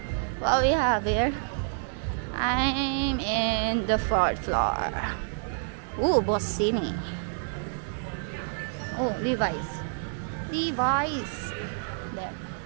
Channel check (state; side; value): silent; left; digital silence